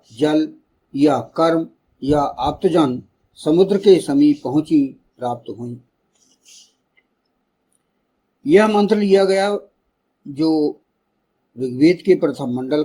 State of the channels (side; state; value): both; identical; correlation 1.00